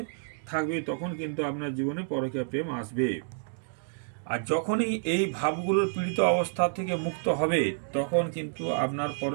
থাকবে তখন কিন্তু আপনার জীবনে পরকীয়া প্রেম আসবে। আর যখনই এই ভাবগুলোর পীড়িত অবস্থা থেকে মুক্ত হবে তখন কিন্তু আপনার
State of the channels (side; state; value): left; silent; digital silence